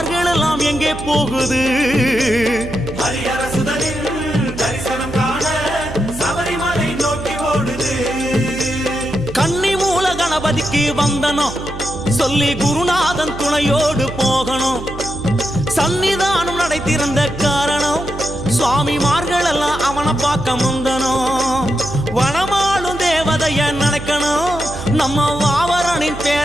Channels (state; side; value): noise; right; hum, 11 dB below the sound